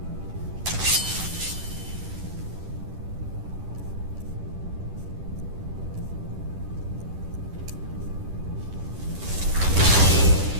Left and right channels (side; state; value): left; late; 10 ms